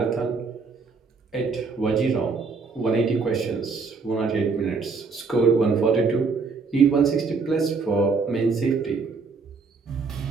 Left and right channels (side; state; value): left; quieter; 4.7 dB